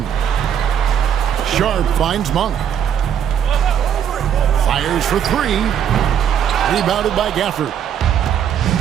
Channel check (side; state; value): left; quieter; 8.9 dB